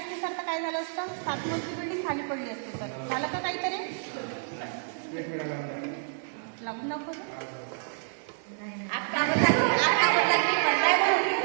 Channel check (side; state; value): left; silent; digital silence